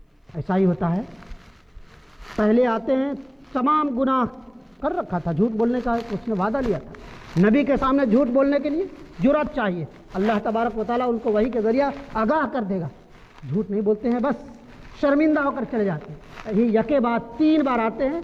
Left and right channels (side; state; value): both; identical; correlation 1.00